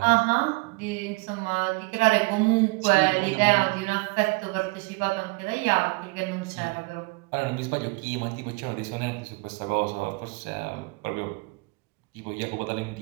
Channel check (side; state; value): left; quieter; 27.8 dB